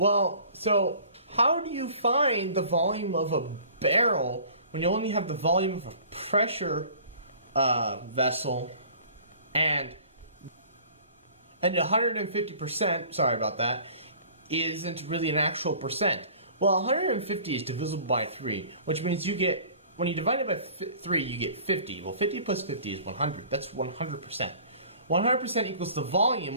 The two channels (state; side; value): inverted; both; correlation -0.48